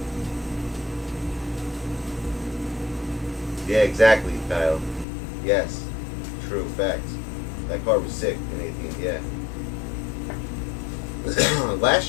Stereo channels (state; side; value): drops out; right; at 5.1 s